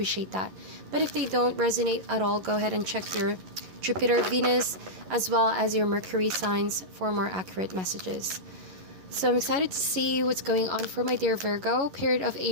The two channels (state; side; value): late; left; 11 ms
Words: that. But if they don't resonate at all, go ahead and check your Jupiter, Venus, as well as your Mercury signs for more accurate messages. So I'm excited to see what's going on for my dear Virgo. Period of